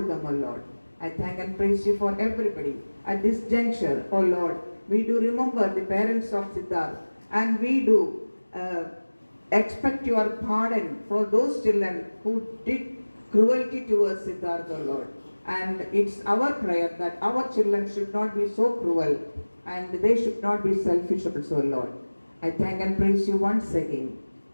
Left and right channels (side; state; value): both; inverted; correlation -1.00